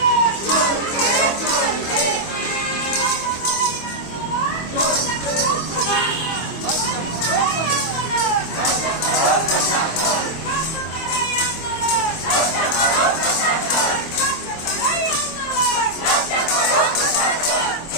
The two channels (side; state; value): right; late; 25 ms